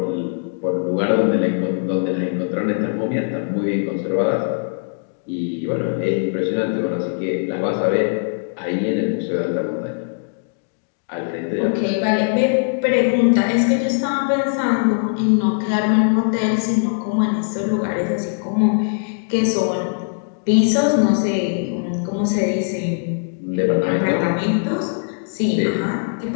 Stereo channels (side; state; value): right; silent; digital silence